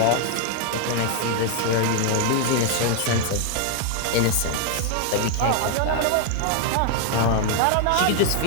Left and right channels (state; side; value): different; both; correlation 0.00